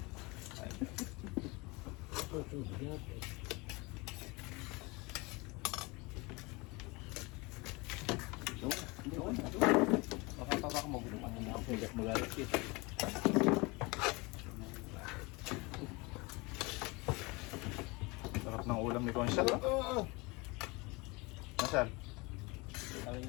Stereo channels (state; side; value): quieter; right; 25.8 dB